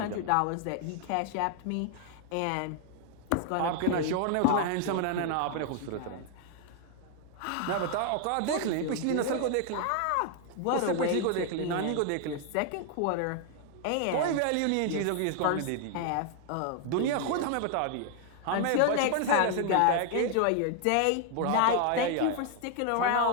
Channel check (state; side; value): different; both; correlation 0.00